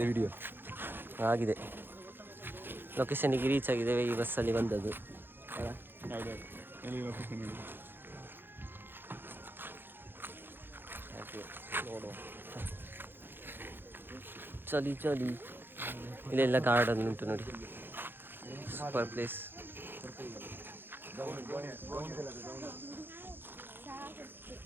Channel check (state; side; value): late; left; 0.10 ms